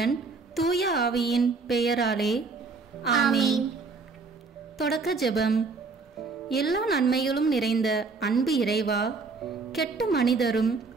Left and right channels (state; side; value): quieter; left; 4.3 dB